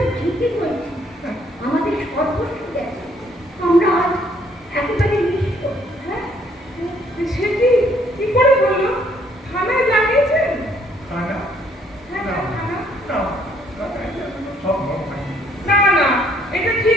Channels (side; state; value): both; normal; correlation 0.65